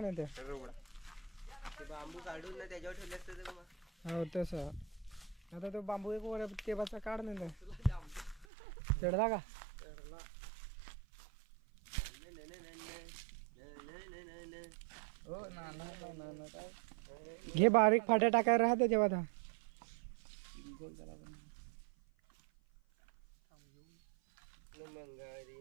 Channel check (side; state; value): left; drops out; at 8.5 s